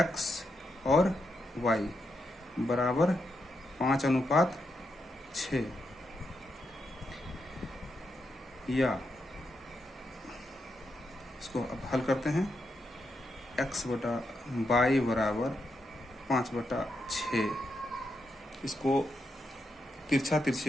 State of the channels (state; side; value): normal; both; correlation 0.83